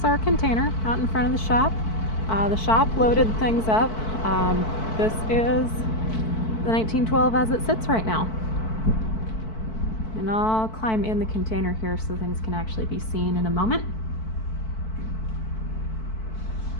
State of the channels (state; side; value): late; right; 4.6 ms